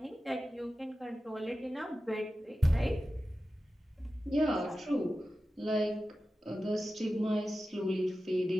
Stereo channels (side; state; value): both; normal; correlation 0.94